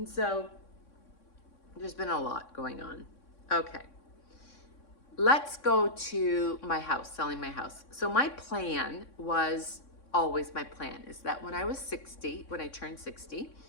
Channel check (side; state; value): right; late; 3.6 ms